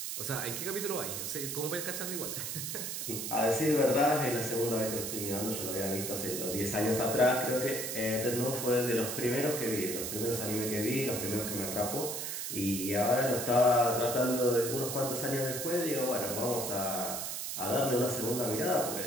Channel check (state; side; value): noise; right; hiss, 4 dB below the sound